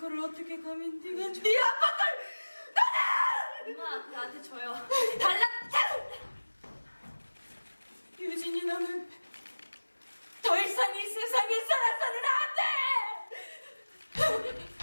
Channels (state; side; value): inverted; both; correlation -1.00